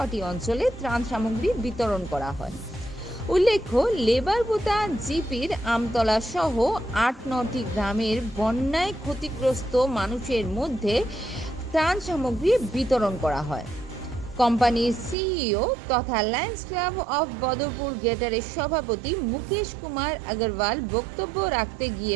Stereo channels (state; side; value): drops out; left; at 15.2 s